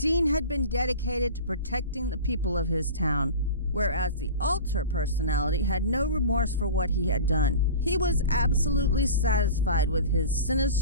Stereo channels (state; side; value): inverted; both; correlation -0.34